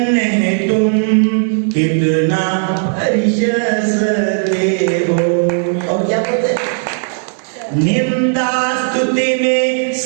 है तुम कितना परिश सहते हो। और क्या बोलते, निंदा स्तुति में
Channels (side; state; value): left; silent; digital silence